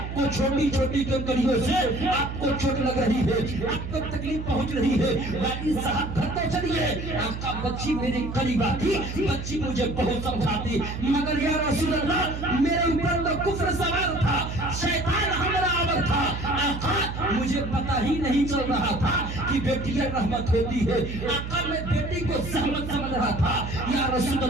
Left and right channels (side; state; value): right; noise; hum, 7 dB below the sound